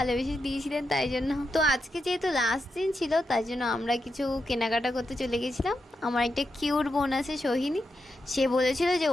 দিয়েছিলেন তাই জন্য। তো আজকে যেহেতু লাস্ট দিন ছিল তাই জন্য আমরা কিছু কেনাকাটা করতে চলে গেছিলাম। আমার একটা কিউট বোন আছে সোহিনী, সে বলেছিল যে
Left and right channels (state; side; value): normal; both; correlation 0.86